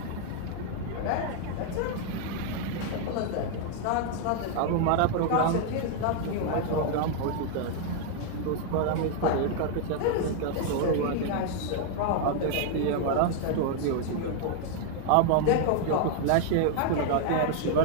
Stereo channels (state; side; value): different; both; correlation 0.00